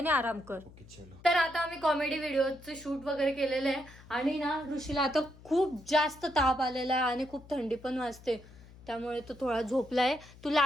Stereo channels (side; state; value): left; noise; hum, 21 dB below the sound